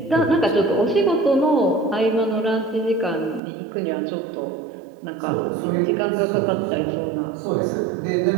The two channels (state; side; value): drops out; left; at 3.4 s